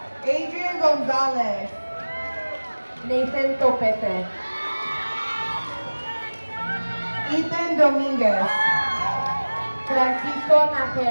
Adrian Gonzalez, Nathan Topete, Ethan Dominguez, Francisco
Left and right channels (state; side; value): inverted; both; correlation -1.00